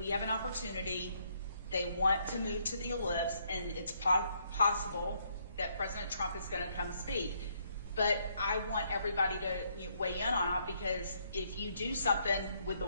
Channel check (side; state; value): both; inverted; correlation -0.72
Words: have an opportunity. They want to move to the Ellipse, and it's possible that President Trump is going to come speak. but I want everybody to weigh in on it, because if you do something with the